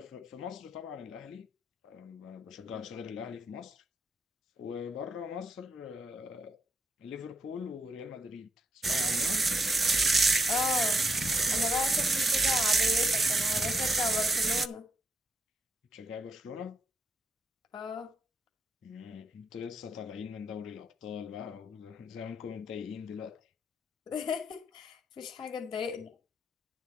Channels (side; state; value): both; normal; correlation 0.80